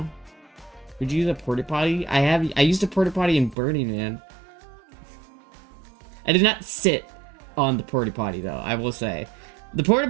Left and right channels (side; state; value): left; drops out; at 3.6 s